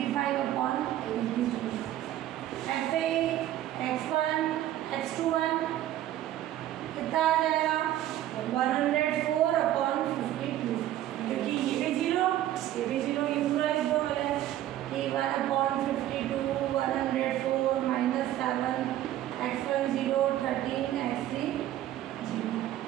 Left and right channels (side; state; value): left; quieter; 13.1 dB